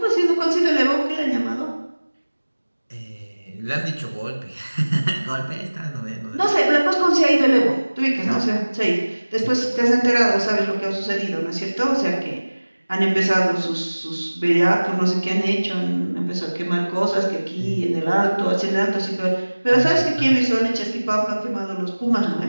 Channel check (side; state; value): both; inverted; correlation -1.00